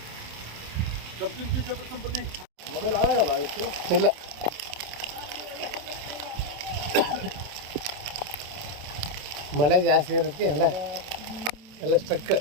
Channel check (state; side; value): late; left; 27 ms